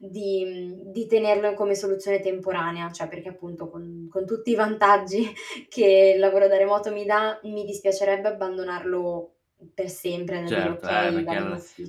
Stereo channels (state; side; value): identical; both; correlation 1.00